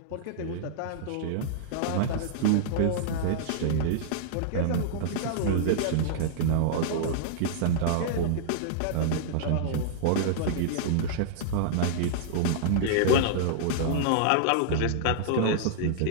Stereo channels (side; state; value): both; different; correlation -0.01